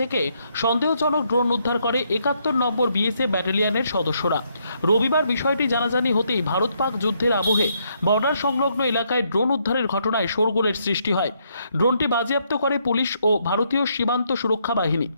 সন্দেহজনক ড্রোন উদ্ধার করে ৭১ নম্বর বিএসএফ ব্যাটালিয়নের সদস্যরা। রবিবার বিষয়টি জানাজানি হতেই ভারত পাক যুদ্ধের আবহে বর্ডার সংলগ্ন এলাকায় ড্রোন উদ্ধারের ঘটনায় শোরগোলের সৃষ্টি হয়। ড্রোনটি বাজেয়াপ্ত করে পুলিশ ও ভারতীয় সীমান্ত সুরক্ষা বাহিনী।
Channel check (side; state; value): both; inverted; correlation -0.74